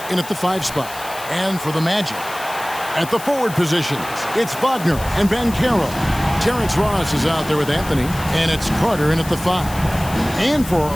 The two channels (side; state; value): left; noise; hiss, 14 dB below the sound